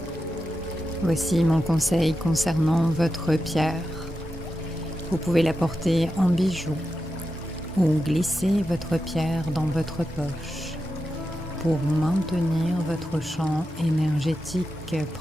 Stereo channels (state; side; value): normal; both; correlation 0.89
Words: Voici mon conseil concernant votre pierre. Vous pouvez la porter en bijou ou glisser votre pierre dans votre poche pour maintenir votre champ énergétique